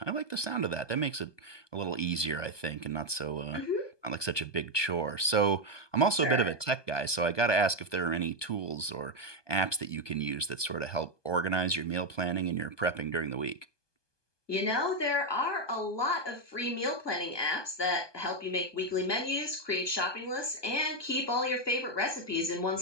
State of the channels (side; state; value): right; late; 1.2 ms